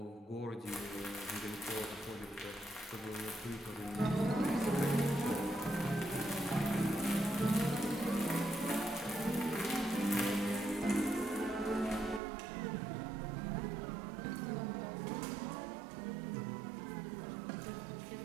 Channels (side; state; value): left; drops out; at 12.2 s